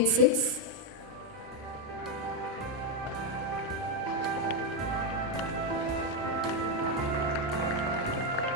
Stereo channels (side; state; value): both; normal; correlation 0.05